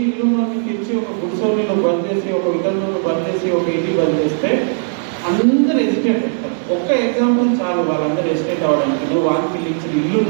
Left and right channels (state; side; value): silent; left; 68 dB below the other